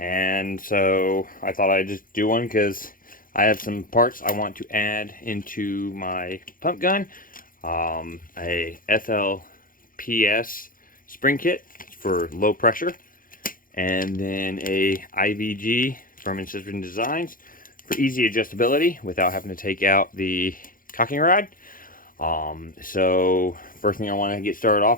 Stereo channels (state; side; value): late; right; 0.40 ms